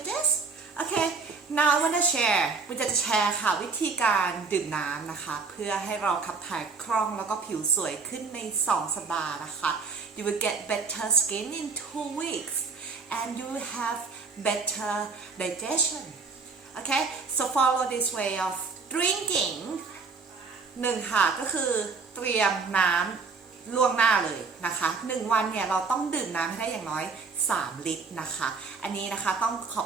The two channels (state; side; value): quieter; left; 4.7 dB